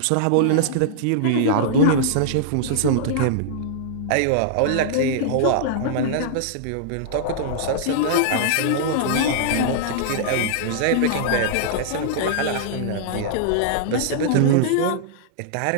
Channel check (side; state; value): both; different; correlation -0.01